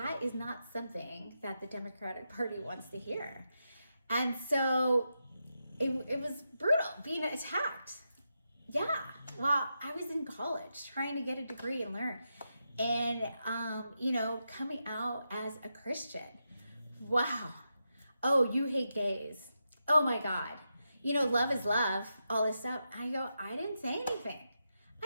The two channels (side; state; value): both; inverted; correlation -0.87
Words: is not something that the Democratic Party wants to hear. And so it was brutal being attacked. Yeah, well, I was in college trying to get a degree and learn. And, coming out as a Christian. Wow. Oh, you hate gays. Oh my God. Love is love, all this stuff. I didn't say anything.